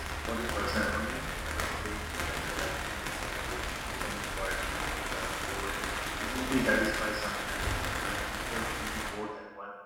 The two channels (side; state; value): both; identical; correlation 1.00